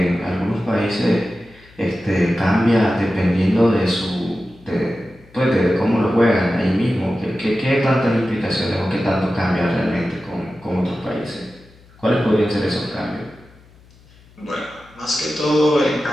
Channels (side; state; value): left; noise; hum, 27 dB below the sound